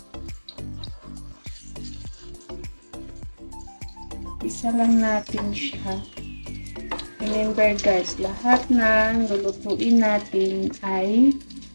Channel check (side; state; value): both; inverted; correlation -1.00